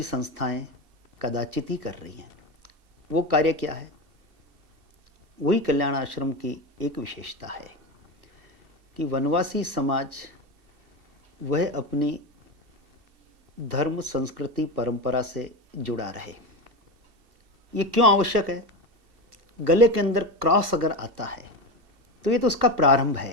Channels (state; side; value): late; left; 2.7 ms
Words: संस्थाएं कदाचित ही कर रही हैं। वो कार्य क्या है? वही कल्याण आश्रम की एक विशेषता है कि वनवासी समाज वह अपनी धर्म, संस्कृति, परंपरा से जुड़ा रहे। ये क्यों आवश्यक है? गले के अंदर क्रॉस अगर आता है तो ये तो उसका प्रारंभ